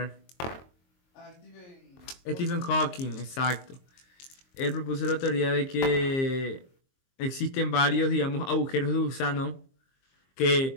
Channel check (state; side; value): late; right; 22 ms